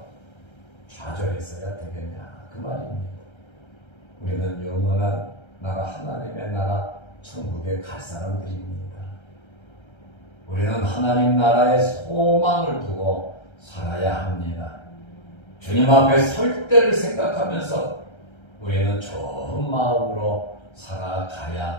좌절했어야 되겠냐, 그 말입니다. 우리는 영원한 나라, 하나님의 나라 천국에 갈 사람들입니다. 우리는 하나님 나라의 소망을 두고 살아야 합니다. 주님 앞에 설 때를 생각하면서 우리는 좋은 마음으로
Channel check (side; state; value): right; late; 1.3 ms